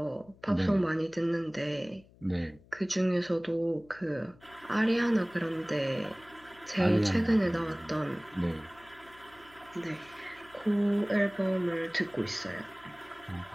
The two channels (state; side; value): noise; left; hum, 26 dB below the sound